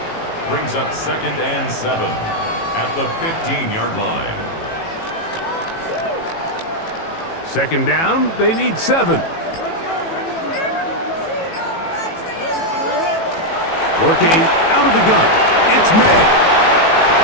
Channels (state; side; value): late; right; 18 ms